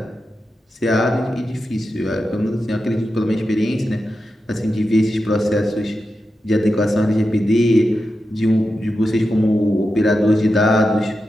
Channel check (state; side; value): normal; both; correlation 0.89